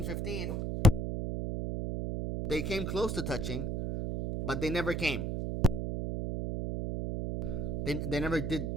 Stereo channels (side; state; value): right; noise; hum, 2 dB below the sound